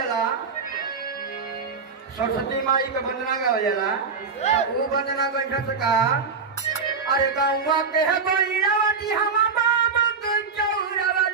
सरस्वती माई के वंदना गावल जाला वो वंदना गइठा से का अरे गौवा के है गोइरावती हम बाबा के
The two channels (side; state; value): left; quieter; 5.2 dB